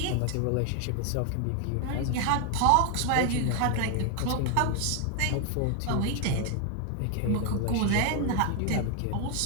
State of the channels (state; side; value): different; both; correlation 0.00